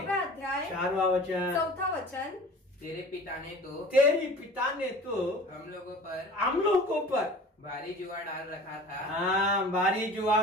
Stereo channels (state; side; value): normal; both; correlation 0.42